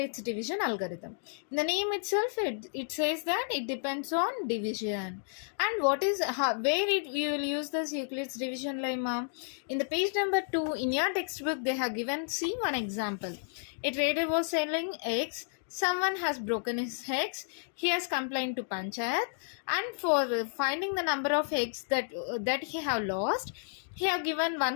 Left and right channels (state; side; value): silent; right; digital silence